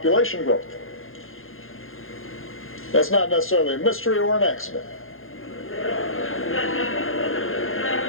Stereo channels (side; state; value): right; late; 0.60 ms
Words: growth. That's not necessarily a mystery or an accident.